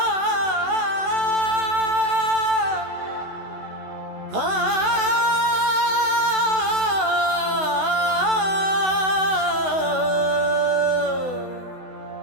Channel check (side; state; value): left; late; 16 ms